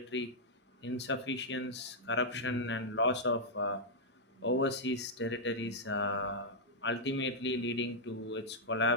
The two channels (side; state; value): both; normal; correlation -0.06